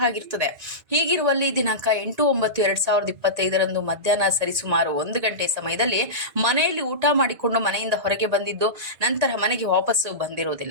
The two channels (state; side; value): late; left; 1.9 ms